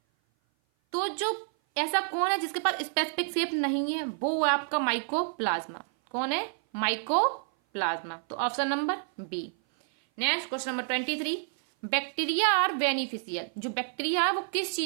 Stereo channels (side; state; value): left; silent; 56 dB below the other